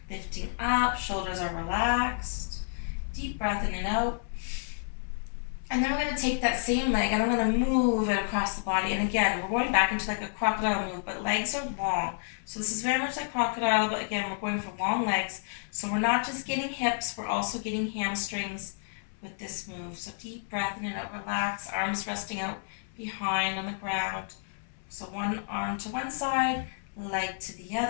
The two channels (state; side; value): silent; right; 58 dB below the other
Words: lifting up. Shoulders are relaxed. Deep breath in and out. And then we're going to take that same leg and I'm going to move it across the body. And again, we're going back into like a crocodile move, but legs are long. So this is very much like crocodile, but again, we're going for long legs. So we're not just getting hips, we're also getting hamstrings with this move. So deep breath in and out, relax, arms resting out behind on the ground. So one arm to one side, leg to the